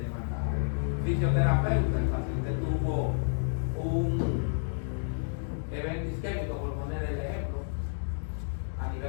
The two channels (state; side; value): silent; right; digital silence